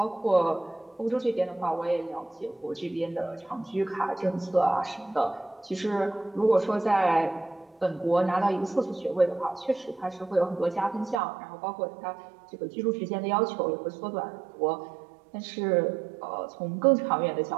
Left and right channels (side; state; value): left; drops out; at 11.2 s